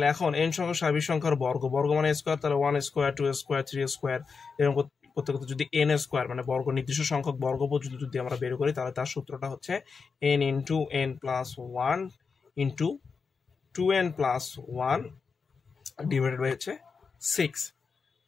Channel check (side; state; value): right; quieter; 5.2 dB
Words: এখন এন সংখ্যক স্বাভাবিক সংখ্যার বর্গ মানে স্কোয়ার, তাহলে 1 স্কোয়ার, 2 স্কোয়ার, 3 স্কোয়ার, এরকম করতে করতে যদি এন স্কোয়ার মানে বর্গ, নির্দিষ্ট সংখ্যক বর্গ পর্যন্ত যদি আমরা বের করি, তাহলে তার সূত্রটা হচ্ছে N into N plus 1 into 2n plus 1 divided by হচ্ছে 6।